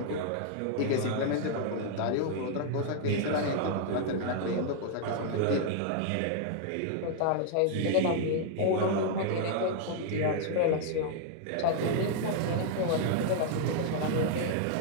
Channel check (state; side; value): different; both; correlation -0.01